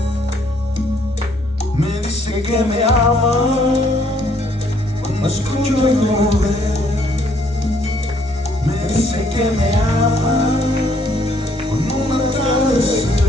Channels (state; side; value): normal; both; correlation 0.66